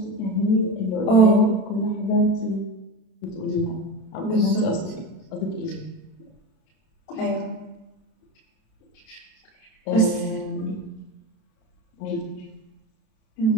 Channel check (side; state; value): right; late; 32 ms